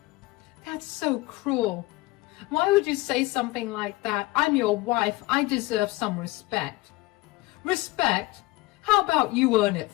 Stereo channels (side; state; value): right; quieter; 20.6 dB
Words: That's so cruel. Why would you say something like that? I'm your wife. I deserve some respect. Respect? How about you earn it